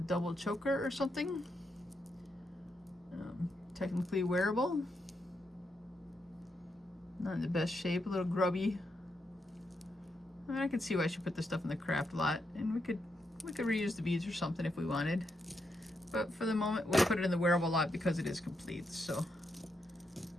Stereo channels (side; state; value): both; normal; correlation 0.82